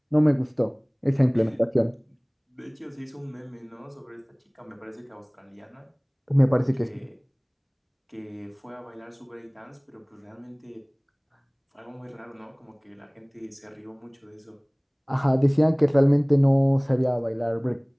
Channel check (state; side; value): identical; both; correlation 1.00